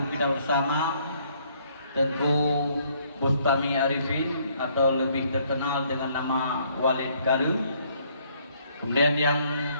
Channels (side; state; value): both; inverted; correlation -0.66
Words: kita bersama, tentu Bustami Arifin atau lebih terkenal dengan nama Walid Garu. Kemudian yang